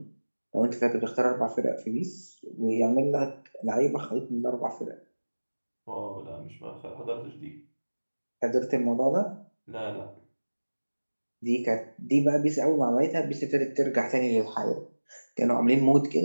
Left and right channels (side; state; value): both; inverted; correlation -1.00